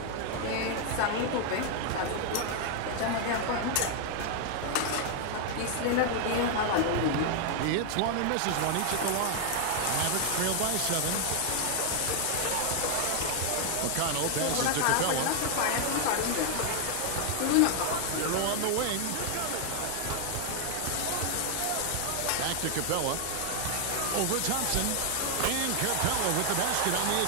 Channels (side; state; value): both; different; correlation 0.00